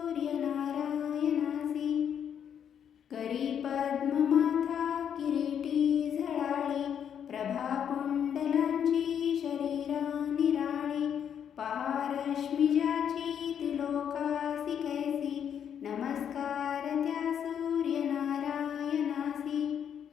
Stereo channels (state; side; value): quieter; right; 8.5 dB